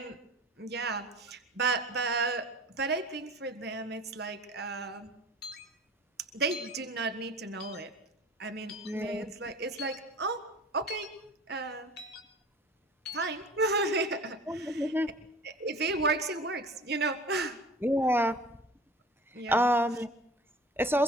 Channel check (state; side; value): normal; both; correlation 0.42